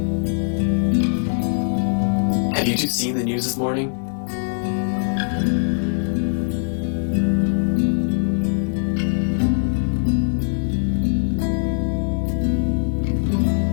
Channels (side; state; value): right; silent; 63 dB below the other